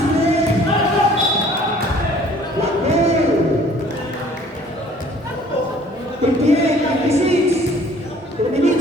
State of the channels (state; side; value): normal; both; correlation 0.54